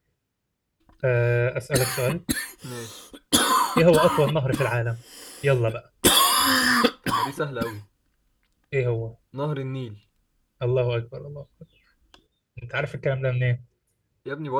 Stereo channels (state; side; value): identical; both; correlation 1.00